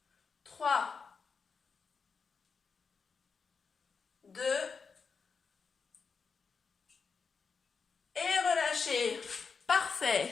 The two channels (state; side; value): quieter; right; 5.3 dB